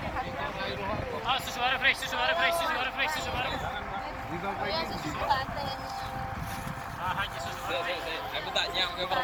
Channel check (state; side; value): identical; both; correlation 1.00